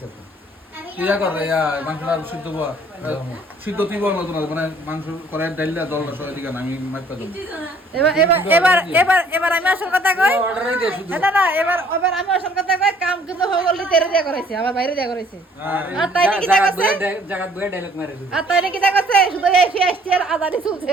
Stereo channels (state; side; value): normal; both; correlation 0.58